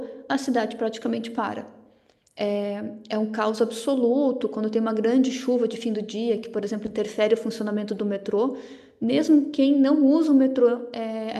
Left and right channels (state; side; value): identical; both; correlation 1.00